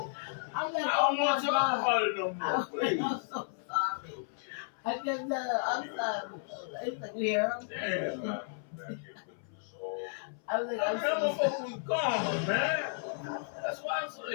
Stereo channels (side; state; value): right; silent; 56 dB below the other